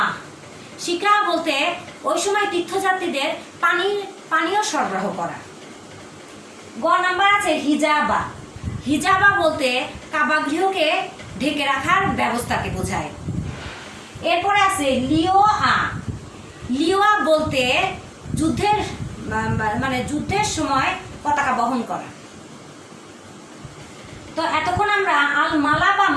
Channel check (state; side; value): identical; both; correlation 1.00